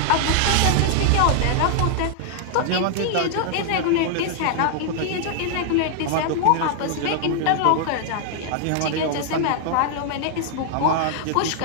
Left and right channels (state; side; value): different; both; correlation 0.00